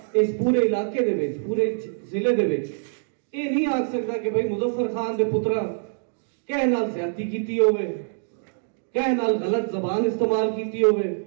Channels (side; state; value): left; silent; digital silence